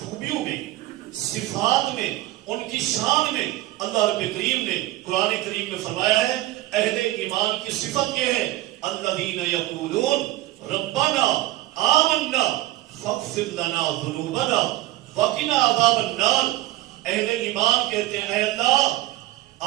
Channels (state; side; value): quieter; left; 16.7 dB